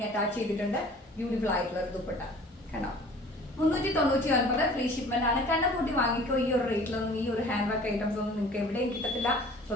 അറ്റാച്ച് ചെയ്തിട്ടുണ്ട്. ബ്യൂട്ടിഫുൾ ആയിട്ടുള്ള ഒരു ദുപ്പട്ട കണ്ടോ. 399 ഫ്രീ ഷിപ്മെന്റ് ആണ്. കണ്ണപ്പൂട്ടി വാങ്ങിക്കോ. ഈ ഒരു റേറ്റിലൊന്നും ഈ ഒരു ഹാൻഡ് വർക്ക് ഐറ്റംസ് ഒന്നും നിങ്ങൾക്ക് എവിടെയും കിട്ടത്തില്ല.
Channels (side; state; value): both; normal; correlation 0.48